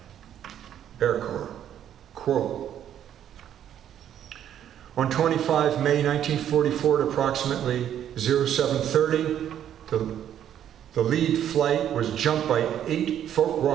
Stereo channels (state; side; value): quieter; left; 10.2 dB